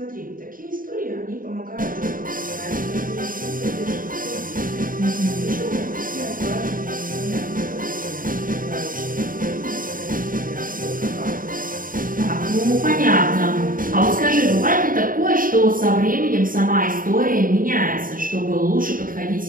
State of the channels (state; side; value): late; left; 0.40 ms